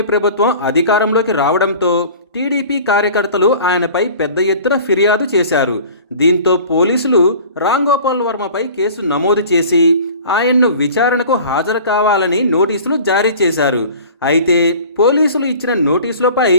ప్రభుత్వం అధికారంలోకి రావడంతో టీడీపీ కార్యకర్తలు ఆయనపై పెద్ద ఎత్తున ఫిర్యాదు చేశారు. దీంతో పోలీసులు రామ్ గోపాల్ వర్మపై కేసు నమోదు చేసి ఆయన్ను విచారణకు హాజరు కావాలని నోటీసులు జారీ చేశారు. అయితే పోలీసులు ఇచ్చిన నోటీసులపై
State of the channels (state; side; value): inverted; both; correlation -0.43